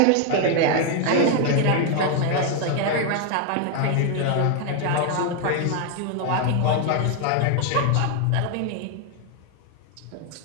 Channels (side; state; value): both; different; correlation 0.00